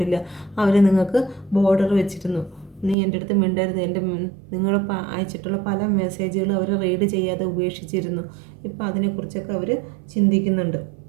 അവർ നിങ്ങൾക്ക് ബോർഡർ വെച്ചിരുന്നു. നീ എൻ്റെ അടുത്ത് മിണ്ടരുത്, നിങ്ങൾ അയച്ചിട്ടുള്ള പല മെസ്സേജുകളും അവർ റീഡ് ചെയ്യാതെ ഉപേക്ഷിച്ചിരുന്നു. ഇപ്പോൾ അതിനെക്കുറിച്ചൊക്കെ അവർ ചിന്തിക്കുന്നുണ്ട്.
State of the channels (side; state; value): left; drops out; at 3.0 s